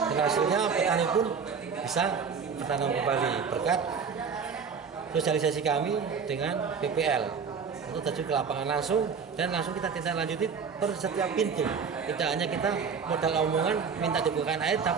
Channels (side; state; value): left; quieter; 6.0 dB